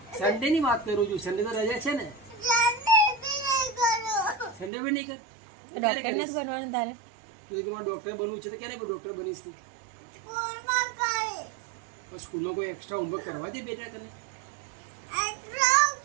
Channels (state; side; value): drops out; left; at 4.7 s